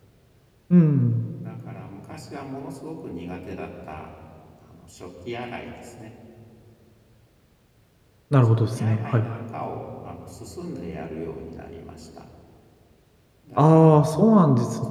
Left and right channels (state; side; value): identical; both; correlation 1.00